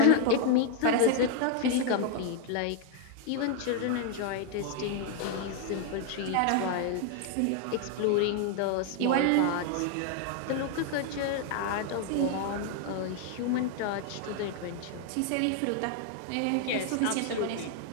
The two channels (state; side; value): different; both; correlation 0.01